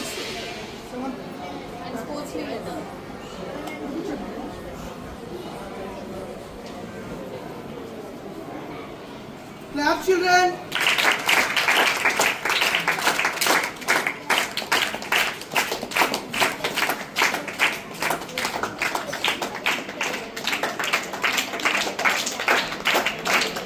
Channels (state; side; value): identical; both; correlation 1.00